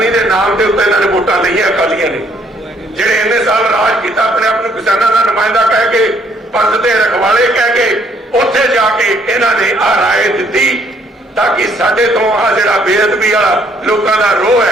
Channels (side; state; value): both; normal; correlation 0.66